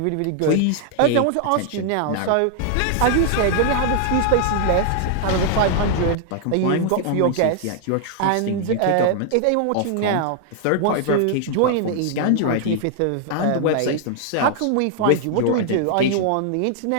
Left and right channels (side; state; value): both; different; correlation 0.00